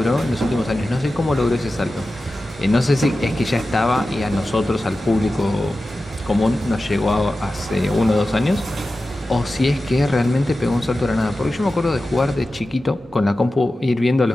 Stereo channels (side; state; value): both; normal; correlation 0.94